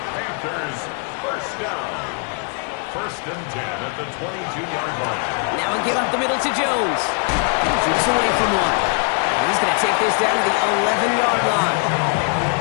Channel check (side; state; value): right; quieter; 38.8 dB